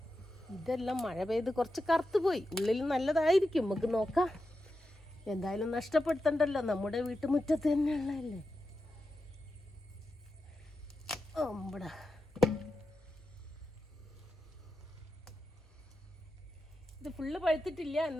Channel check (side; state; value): both; normal; correlation 0.90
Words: ഇതെല്ലാം മഴ പെയ്ത് കുറച്ച് കറുത്തു പോയി. ഉള്ളിൽ നല്ലതായിരിക്കും, നമുക്ക് നോക്കാം. എന്തായാലും നഷ്ടപ്പെടുത്തണ്ടല്ലോ, നമ്മുടെ വീട്ടുമുറ്റത്ത് തന്നെയുള്ളതല്ലേ. ഓമ്പടാ, ഇത് ഫുള്ള് പഴുത്തിട്ടില്ല,